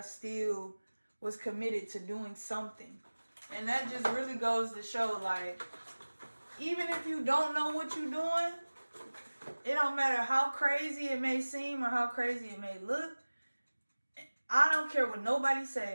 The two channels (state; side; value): inverted; both; correlation -1.00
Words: still was committed to doing something. And that just really goes to show, like, even if you don't know what you're doing, it don't matter how crazy it may seem or how crazy it may look. I don't care what nobody